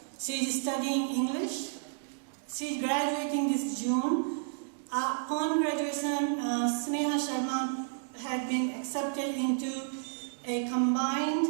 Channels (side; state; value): left; silent; digital silence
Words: She is studying English. She is graduating this June. Upon graduation, Sneha Sharma had been accepted into a combined